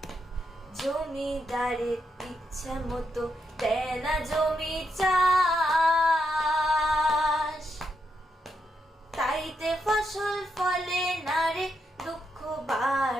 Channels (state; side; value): normal; both; correlation 0.81